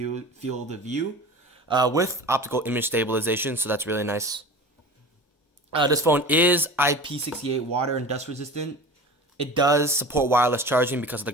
field of view, with optical image stabilization, so that's really nice. This phone is IP68 water and dust resistant. It does support wireless charging because of the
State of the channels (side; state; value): both; normal; correlation 0.35